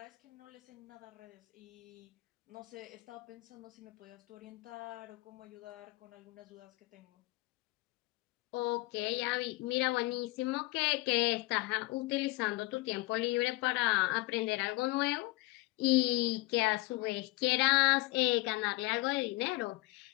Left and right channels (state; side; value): quieter; right; 21.5 dB